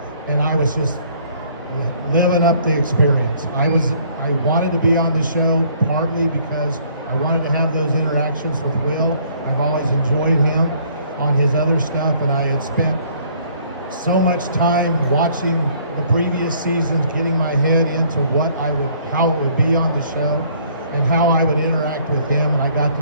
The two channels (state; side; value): inverted; both; correlation -0.60